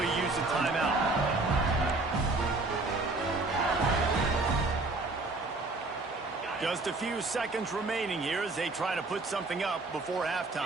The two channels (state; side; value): quieter; left; 3.3 dB